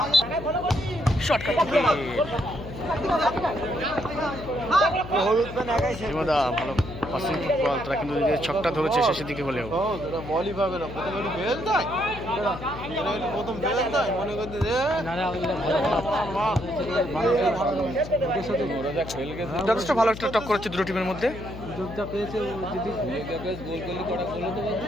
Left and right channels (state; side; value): noise; left; hum, 11 dB below the sound